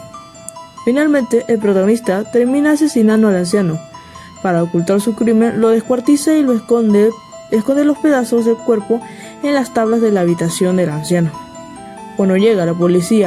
Finalmente, el protagonista termina asesinando al anciano. Para ocultar su crimen, lo descuartiza y lo esconde los pedazos del cuerpo en las tablas de la habitación del anciano. Cuando llega la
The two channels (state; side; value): identical; both; correlation 1.00